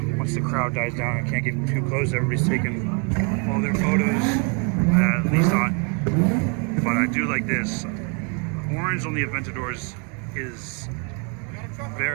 once the crowd dies down. I can't get too close. Everybody's taking all their photos, at least on. But I do like this. Orange on the Aventadors is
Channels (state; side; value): quieter; left; 36.5 dB